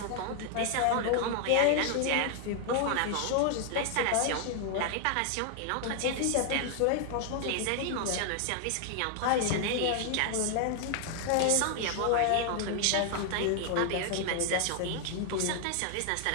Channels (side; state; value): both; different; correlation 0.00